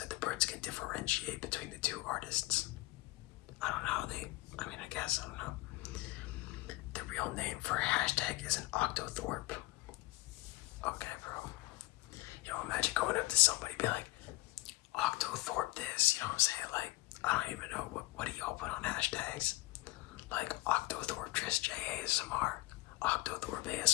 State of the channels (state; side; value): quieter; right; 20.0 dB